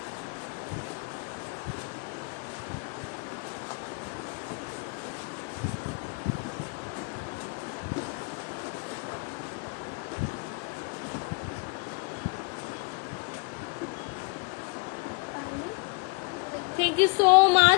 থ্যাংক ইউ সো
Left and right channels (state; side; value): quieter; right; 32.8 dB